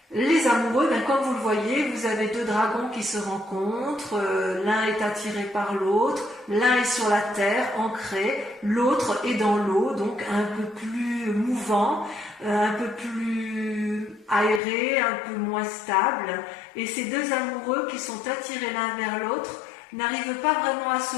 Les amoureux, comme vous le voyez, vous avez deux dragons qui se rencontrent, l'un est attiré par l'autre, l'un est sur la terre, ancré, l'autre est dans l'eau, donc un peu plus mouvant, un peu plus aéré, un peu moins stable. Et ces deux amoureux qui sont attirés l'un vers l'autre n'arrivent pas vraiment à se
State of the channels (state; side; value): drops out; right; at 14.6 s